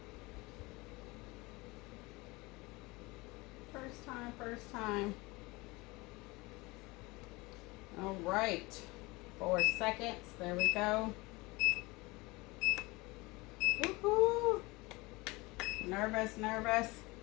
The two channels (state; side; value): quieter; right; 23.5 dB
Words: First time. All right. 4 seconds. There we go. Woohoo! Nervous.